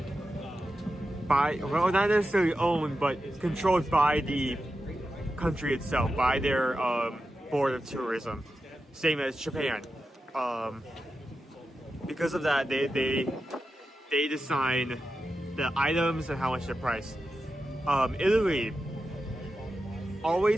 by, well, not necessarily owned, but controlled by the country itself, by their board of tourism, same as Japan. Because of that, they design the items and how much they're priced. Italy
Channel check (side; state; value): both; normal; correlation 0.90